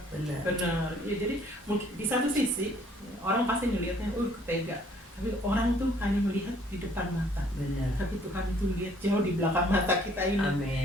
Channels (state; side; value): normal; both; correlation 0.60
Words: sendiri. Benar. Ya, jadi mungkin di satu sisi orang pasti melihatnya, tega. Tapi orang tuh hanya melihat di depan mata. Benar. Tapi Tuhan itu lihat jauh di belakang mata kita ini.